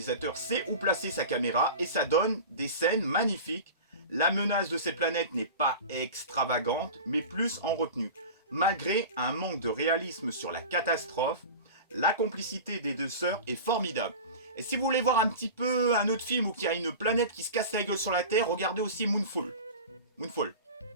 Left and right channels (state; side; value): inverted; both; correlation -0.32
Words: sait où placer sa caméra et ça donne des scènes magnifiques. La menace de cette planète n'est pas extravagante, mais plus en retenue. Malgré un manque de réalisme sur la catastrophe, la complicité des deux sœurs est formidable. Et si vous voulez voir un petit peu un autre film où il y a une planète qui se casse la gueule sur la Terre, regardez aussi Moonfall.